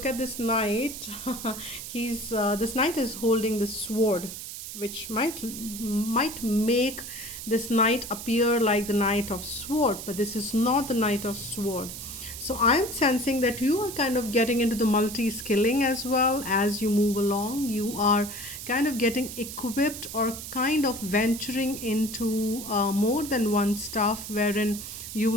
at this knight, this knight is holding the sword, which might make this knight appear like the Knight of Sword, but this is not the Knight of Sword. So I'm sensing that you are kind of getting into the multi-skilling as well as you move along. You are kind of getting equipped or kind of venturing into more than one stuff wherein you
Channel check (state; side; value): noise; right; hiss, 9 dB below the sound